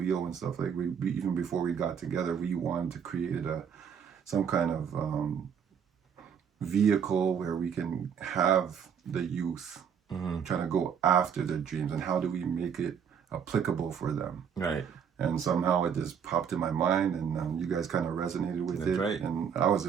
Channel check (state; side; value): quieter; left; 7.5 dB